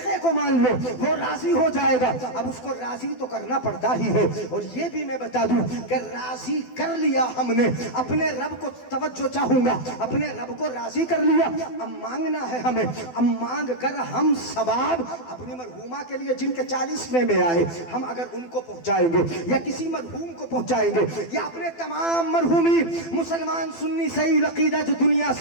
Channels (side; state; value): right; late; 12 ms